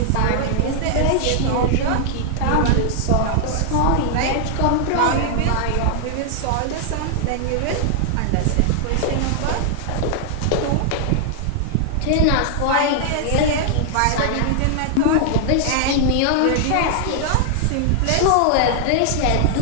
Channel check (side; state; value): both; different; correlation -0.01